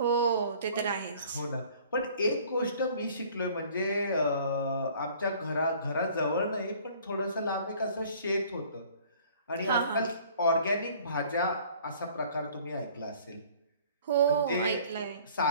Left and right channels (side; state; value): both; inverted; correlation -0.52